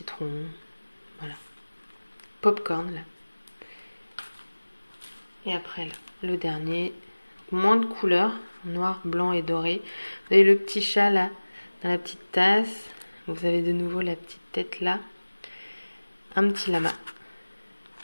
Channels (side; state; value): both; inverted; correlation -1.00